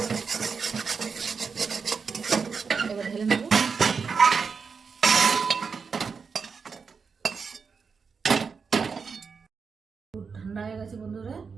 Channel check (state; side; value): quieter; left; 5.5 dB